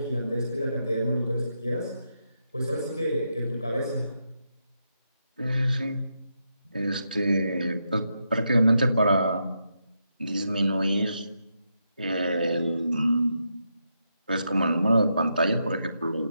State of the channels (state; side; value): inverted; both; correlation -0.83